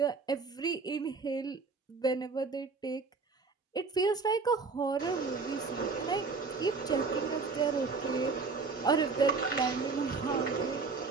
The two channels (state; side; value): quieter; left; 4.4 dB